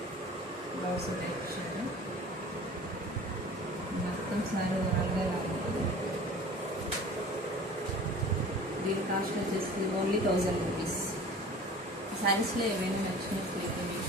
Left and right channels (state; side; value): normal; both; correlation 0.43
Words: బ్లౌజ్ టెక్స్చర్ మొత్తం సారీ ఓవరాల్గా ఉంటుంది. దీని కాస్ట్ వచ్చేసి ఓన్లీ 1000 రూపీస్. శారీస్లో ఏమైనా నచ్చినట్లయితే